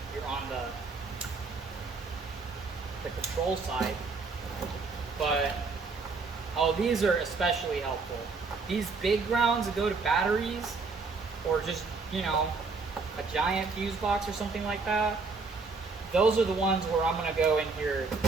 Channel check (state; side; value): quieter; left; 4.3 dB